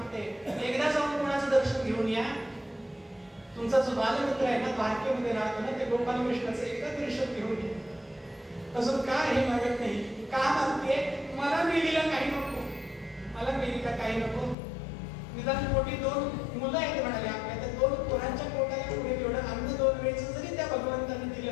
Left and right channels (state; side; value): drops out; right; at 14.6 s